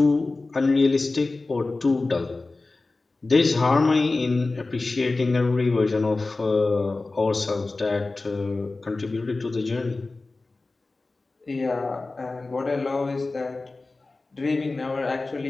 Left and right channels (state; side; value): quieter; right; 3.4 dB